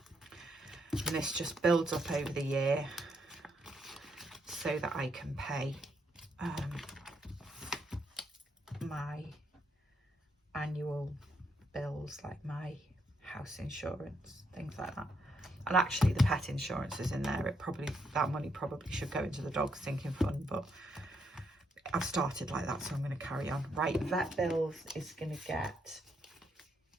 And this just builds up over the year so that I can pay my annual bills like my house insurance, things like that. And actually the pet insurance is in there. That money probably should go into the dog sinking fund, but I've started like that, so I'm going to carry on. Right, vet bills is going to get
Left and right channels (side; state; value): both; normal; correlation 0.77